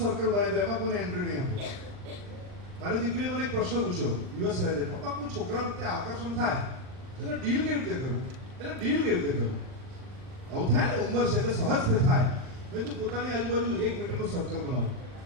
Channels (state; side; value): late; left; 40 ms